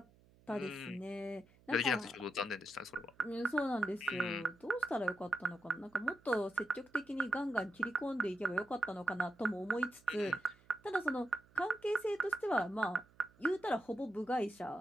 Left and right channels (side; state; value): right; noise; hum, 28 dB below the sound